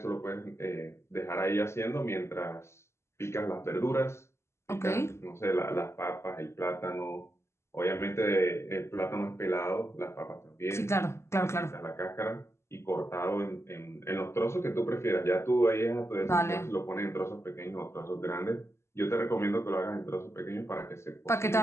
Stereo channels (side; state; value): right; late; 0.13 ms